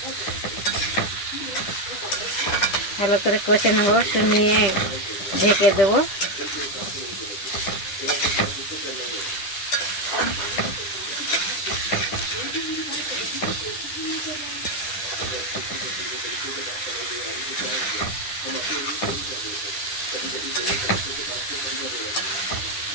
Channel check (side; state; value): right; late; 10 ms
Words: ভালো করে কষে নেব, একটু নিয়ে ঢেকে দেবো।